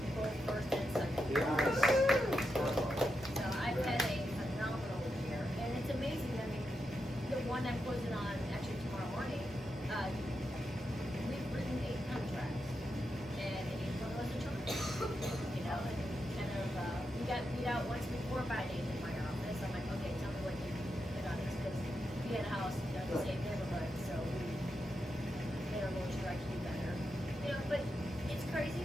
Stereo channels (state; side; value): normal; both; correlation 0.86